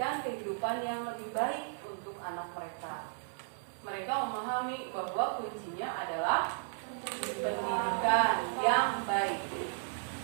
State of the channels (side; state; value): left; silent; 55 dB below the other